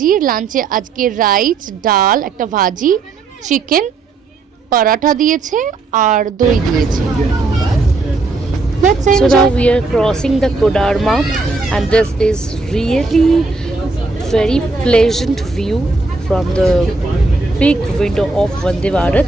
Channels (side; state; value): left; quieter; 3.8 dB